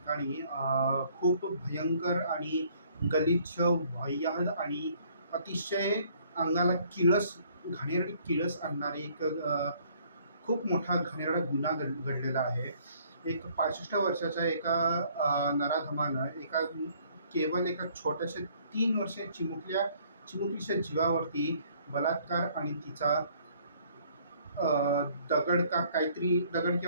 खूप भयंकर आणि गलिच्छ, वाह्यात आणि अतिशय अंगाला घाणेरडी किळस आणणारी एक खूप मोठा घाणेरडा गुन्हा घडलेला आहे. एक 65 वर्षाच्या एका नराधमानं केवळ एका छोट्याशा 3 वर्षीय चिमुकलीच्या जीवावरती बलात्कार आणि तिचा दगड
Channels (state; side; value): inverted; both; correlation -0.61